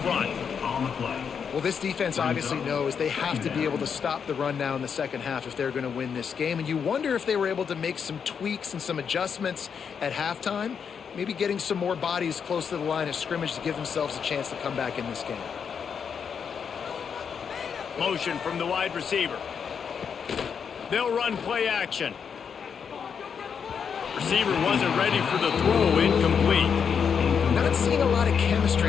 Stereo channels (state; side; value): quieter; right; 6.9 dB